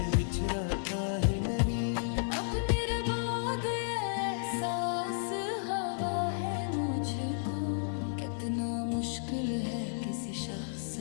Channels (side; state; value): right; silent; digital silence